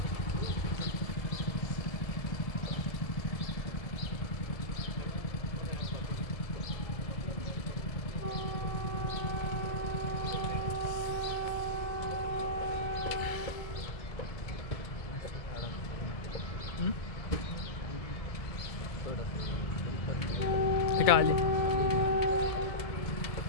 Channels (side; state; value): right; late; 1.7 ms